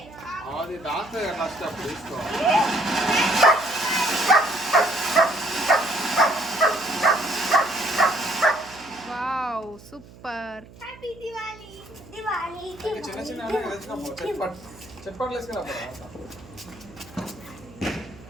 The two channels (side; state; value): right; noise; hum, 21 dB below the sound